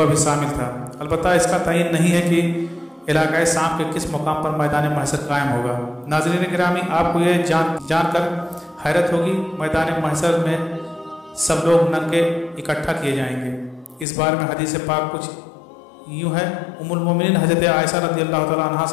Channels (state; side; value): drops out; right; at 14.1 s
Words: भी शामिल था। अलबत्ता इसका तयन नहीं है कि इलाक़ाए शाम के किस मुकाम पर मैदान महशर कायम होगा। नाज़रीन गिरामी, आपको ये जानकर हैरत होगी, मैदान महशर में सब लोग नंगे इकट्ठा किए जाएंगे। इस बारे में हदीस पाक कुछ यूँ है। उम्मुल मोमिनीन हज़रत आयशा रज़ियल्लाहु तआला अन्हा